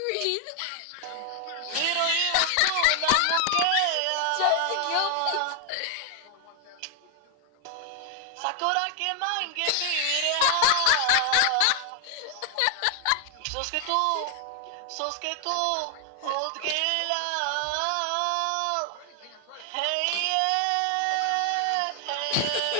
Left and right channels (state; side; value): different; both; correlation 0.01